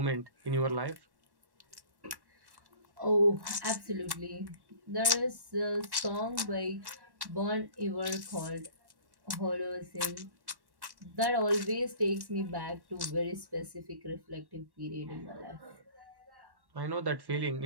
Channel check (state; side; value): late; left; 1.1 ms